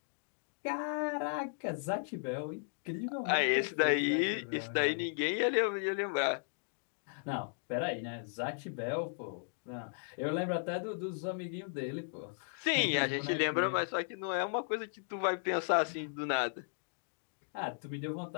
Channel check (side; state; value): right; silent; digital silence